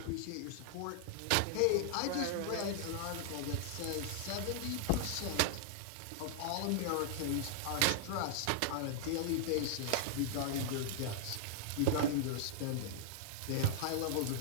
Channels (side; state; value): both; different; correlation -0.01